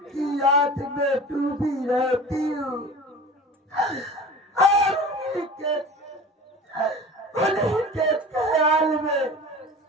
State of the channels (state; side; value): normal; both; correlation 0.38